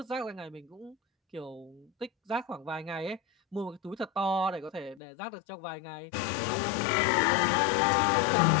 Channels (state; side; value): drops out; right; at 5.0 s